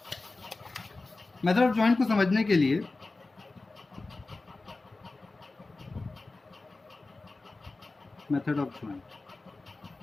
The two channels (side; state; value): right; quieter; 3.4 dB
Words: मेथड ऑफ जॉइंट को समझने के लिए मेथड ऑफ